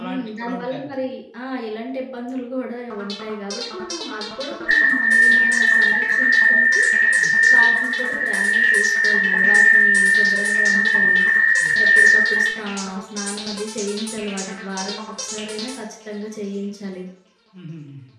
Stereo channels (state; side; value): identical; both; correlation 1.00